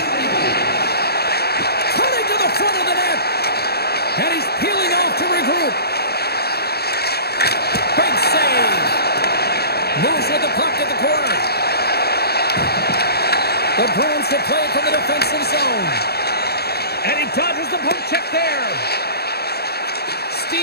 Cutting to the front of the net. And he's peeling off to regroup. Big save. Moves with the puck at the corner. The Bruins will play it from the defensive zone. And he dodges the poke check there.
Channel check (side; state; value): right; late; 0.46 ms